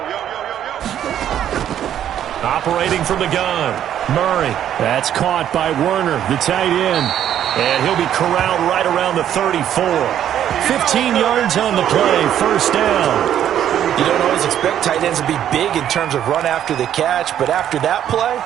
Operating from the gun, Murray. That's caught by Werner, the tight end. And he'll be corralled right around the 34. 15 yards on the play, first down. You don't always expect tight ends to be big in terms of run after the catch, but after that play,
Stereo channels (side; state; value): left; quieter; 10.5 dB